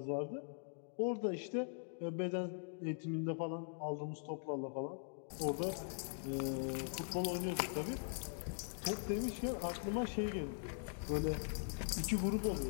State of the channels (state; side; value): silent; right; digital silence